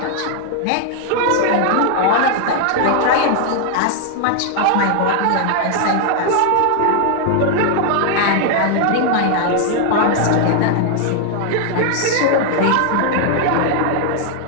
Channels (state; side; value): different; both; correlation 0.00